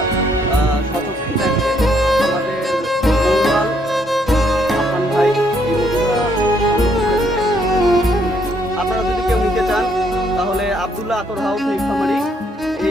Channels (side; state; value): both; normal; correlation 0.70